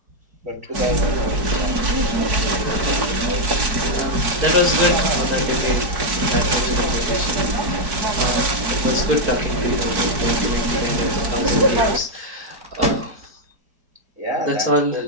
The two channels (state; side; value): late; left; 4.6 ms